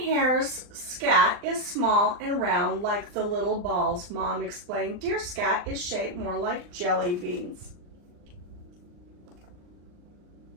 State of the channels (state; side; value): late; left; 39 ms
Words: hares' scat is small and round like the little balls, Mom explained. Deer scat is shaped more like jelly beans.